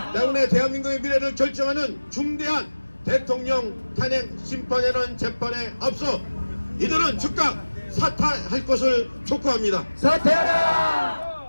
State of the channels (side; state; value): both; inverted; correlation -1.00